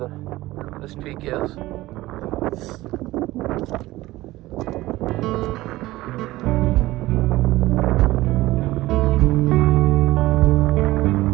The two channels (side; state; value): left; quieter; 17.7 dB